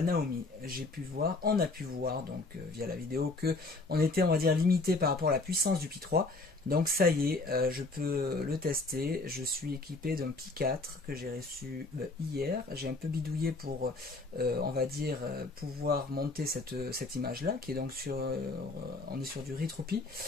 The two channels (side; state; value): right; quieter; 3.4 dB